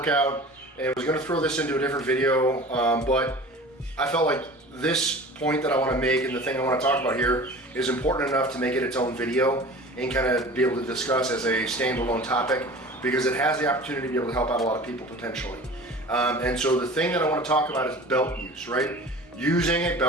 and I was gonna throw this into a different video, but I felt like this point that I want to make and the thing I want to talk about here is important enough to make it its own video and kind of be able to discuss as a standalone topic, because it has the opportunity to be able to help out a lot of people potentially. And so the thing that I want to talk about is belt use, right? Using a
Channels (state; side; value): normal; both; correlation 0.40